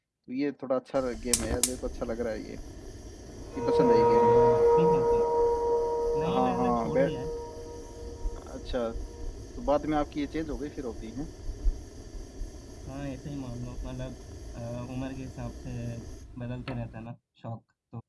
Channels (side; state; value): both; identical; correlation 1.00